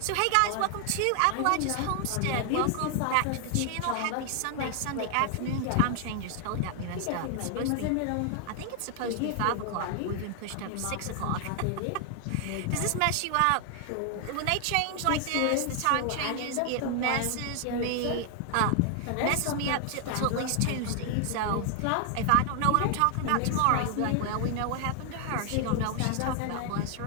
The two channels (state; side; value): different; both; correlation 0.00